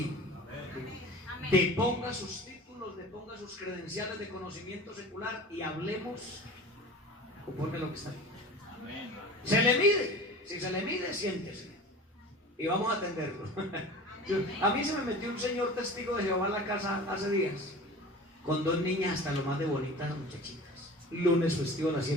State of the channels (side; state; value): both; normal; correlation 0.38